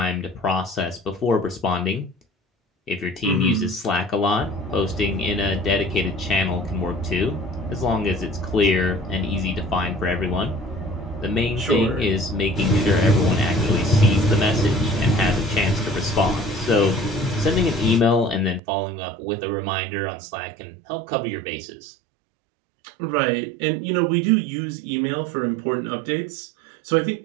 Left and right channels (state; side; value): drops out; left; at 18.6 s